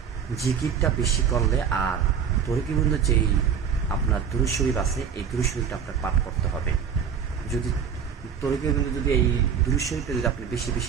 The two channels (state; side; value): quieter; left; 7.4 dB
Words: জিকিরটা বেশি করলে, আর তরিগোবিন্দ যেই আপনার দুরূদ শরীফ আছে, এই দুরূদ শরীফটা আপনার পাঠ করতে হবে। যদি তরিগোবিন্দ যদি এই দুরূদ শরীফটা যদি আপনি বেশি